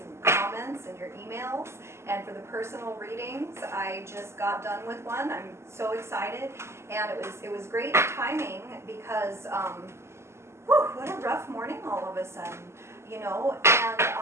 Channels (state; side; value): late; left; 0.13 ms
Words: comments, and your emails, and for the personal readings. I just got done with one. I'm so excited, and it was great timing because what a rough morning all of a sudden, you know. And